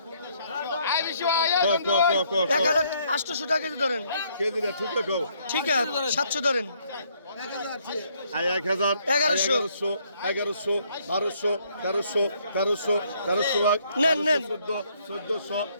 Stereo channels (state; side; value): inverted; both; correlation -0.68